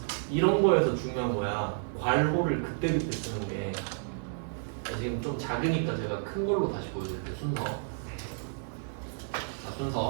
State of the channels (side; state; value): left; silent; digital silence